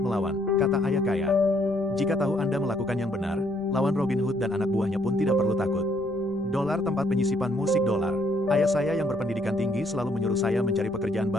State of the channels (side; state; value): left; noise; rumble, 22 dB below the sound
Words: melawan, kata ayah kaya. Jika tahu Anda melakukan yang benar, lawan Robin Hood dan anak buahnya pun tidak perlu takut. Dolar tempat penyisipan musik dolar. Ayah saya yang berpendidikan tinggi selalu menyuruh saya mencari pekerjaan